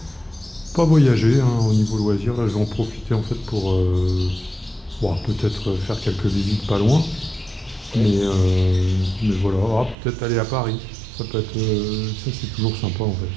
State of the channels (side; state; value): left; drops out; at 10.0 s